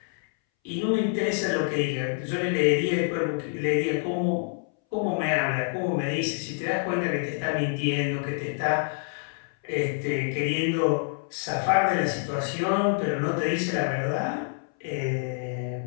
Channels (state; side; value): silent; right; 60 dB below the other